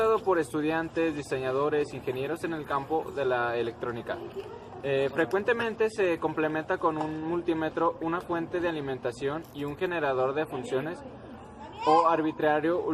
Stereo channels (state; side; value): identical; both; correlation 1.00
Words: por estudiantes, diseñadores, ingenieros en el campo de la electrónica. Frecuentemente se complementa con un multímetro, una fuente de alimentación y un generador de funciones o arbitrario